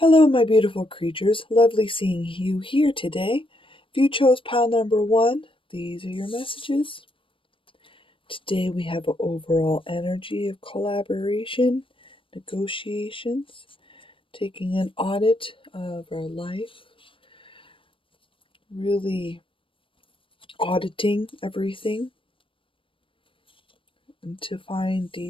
my beautiful creatures. Lovely seeing you here today. If you chose pile number one, these are your messages. Today we have an overall energy of collaboration, negotiations, taking an audit of our life, really auditing everything and to find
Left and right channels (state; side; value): late; right; 0.25 ms